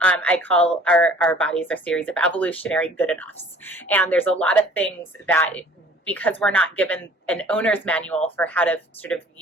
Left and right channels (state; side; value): normal; both; correlation 0.50